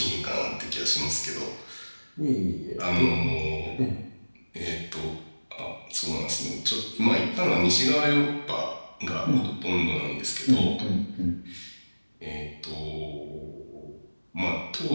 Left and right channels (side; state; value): both; inverted; correlation -1.00